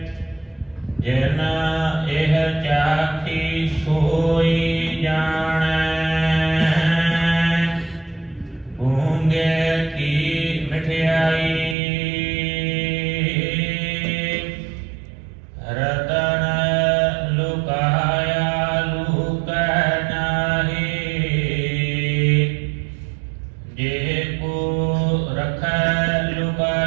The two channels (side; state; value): left; drops out; at 11.8 s